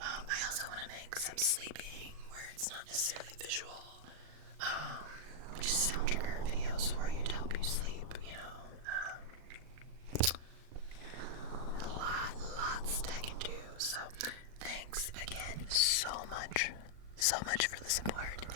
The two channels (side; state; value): left; late; 39 ms